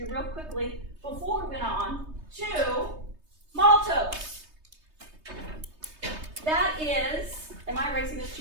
real quickly before we went on to maltose. That is, am I erasing this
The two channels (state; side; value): late; left; 3.2 ms